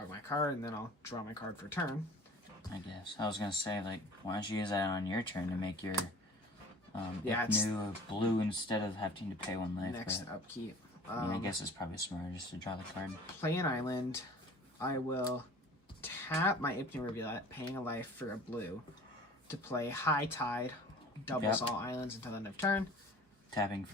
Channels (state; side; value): normal; both; correlation 0.45